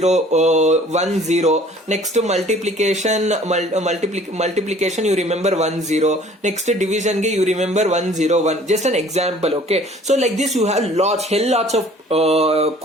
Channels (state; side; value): normal; both; correlation 0.52